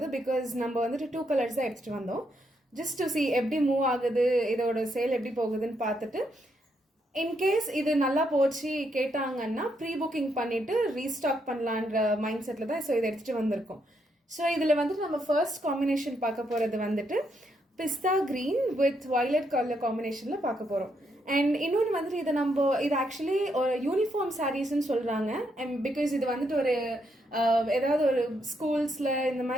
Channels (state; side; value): normal; both; correlation 0.77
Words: பிகாஸ் நம்ம வந்துட்டு 2 கலர்ஸ் தான் எடுத்துகிட்டு வந்தோம். ஜஸ்ட் டு சி எப்படி மூவ் ஆகுது, இதோட சேல் எப்படி போகுதுன்னு பார்த்துட்டு இன்கேஸ் இது நல்லா போச்சு கேட்டாங்கன்னா ப்ரீ புக்கிங் பண்ணிட்டு ரீஸ்டாக் பண்ணலான்ற மைண்ட் செட்டில் தான் இதை எடுத்துகிட்டு வந்திருக்கோம். ஸோ இதில் வந்துட்டு நம்ம ஃபர்ஸ்ட் காம்பினேஷன் பார்க்க போகிறது வந்துட்டு pista green with violet colour காம்பினேஷனில் பார்க்க போகிறோம். அண்ட் இன்னொன்று வந்துட்டு இது ஆக்சுவலி ஒரு யூனிஃபார்ம் சாரீஸ்ன்னு சொல்கிறாங்க. அண்ட் பிகாஸ் இது வந்துட்டு ஒரு ஏதாவது ஒரு ஸ்கூல்ஸில் இந்த